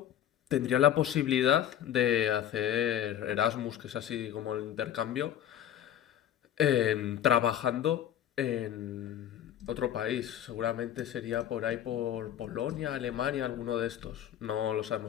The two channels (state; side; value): quieter; right; 10.6 dB